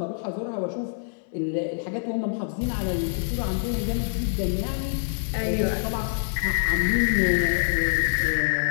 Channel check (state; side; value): silent; right; 59 dB below the other